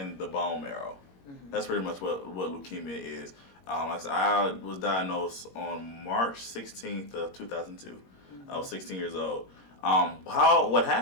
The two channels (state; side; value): late; right; 21 ms